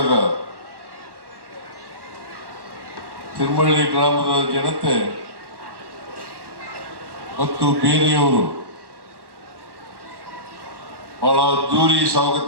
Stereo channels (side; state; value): left; late; 1.1 ms